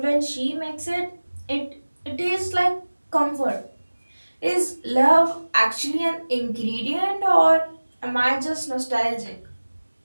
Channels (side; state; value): both; inverted; correlation -1.00